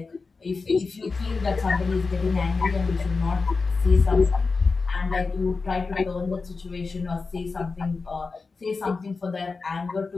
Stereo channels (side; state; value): right; quieter; 4.3 dB